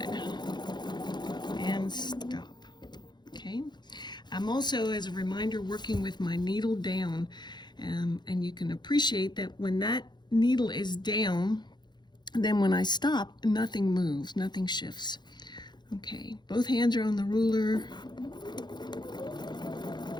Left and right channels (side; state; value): right; late; 0.21 ms